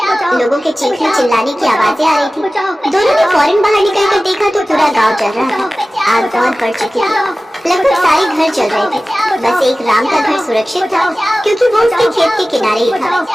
लोगों के चीखने चिल्लाने की आवाजें आ रही थी। दोनों ने फौरन बाहर निकलकर देखा तो पूरा गांव जल रहा था। आग बहुत बढ़ चुकी थी, लगभग सारे घर जल रहे थे। बस एक राम का घर सुरक्षित था, क्योंकि वो उसके खेत के किनारे ही था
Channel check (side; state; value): both; normal; correlation 0.96